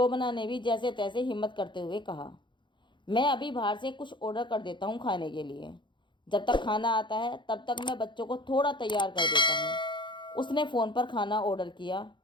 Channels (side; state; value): right; late; 0.23 ms